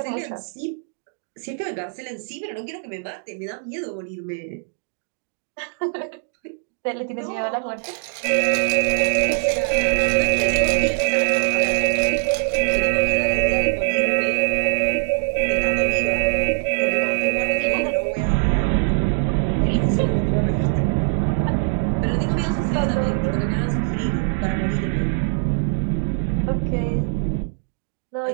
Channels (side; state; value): left; silent; digital silence